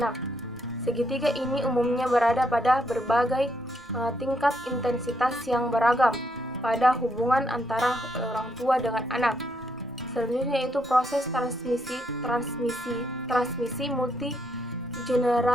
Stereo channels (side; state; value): both; normal; correlation 0.76